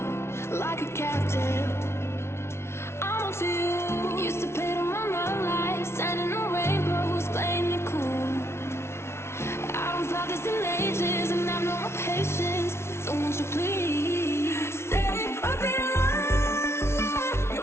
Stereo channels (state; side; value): late; right; 0.12 ms